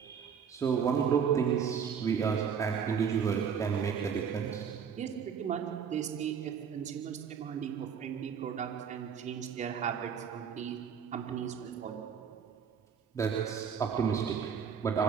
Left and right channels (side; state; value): left; quieter; 7.1 dB